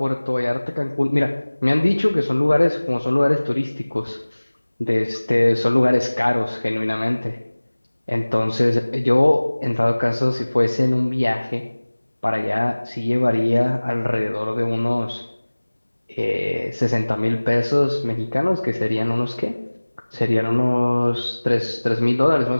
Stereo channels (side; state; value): both; inverted; correlation -1.00